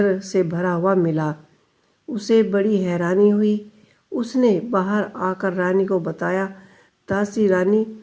से भरा हुआ मिला। उसे बड़ी हैरानी हुई। उसने बाहर आकर रानी को बताया। दासी रानी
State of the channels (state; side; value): identical; both; correlation 1.00